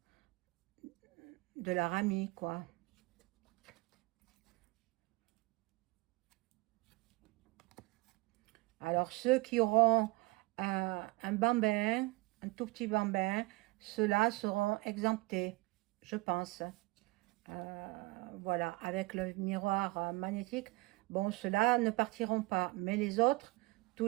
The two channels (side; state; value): left; quieter; 24.1 dB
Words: leur ami, quoi. Alors, ceux qui auront un bambin, un tout petit bambin, ceux-là seront exemptés, je pense. Voilà, avec le miroir magnétique, bon, ceux-là ne partiront pas. Mais les autres, tous